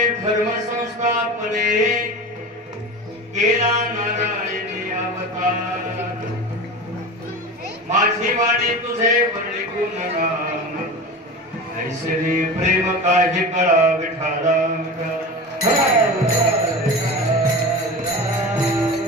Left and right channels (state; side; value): normal; both; correlation 0.30